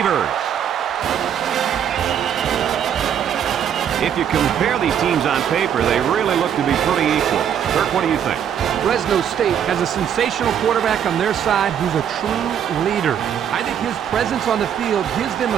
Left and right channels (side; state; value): left; quieter; 9.0 dB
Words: If you compare these teams on paper, they really look to be pretty equal. Kirk, what do you think? Fresno State has a sensational quarterback on their side who's a true leader. I think his presence on the field gives them